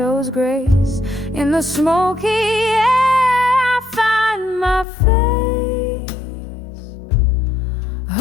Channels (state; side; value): drops out; right; at 4.9 s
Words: grace. In the smoky air I find my face.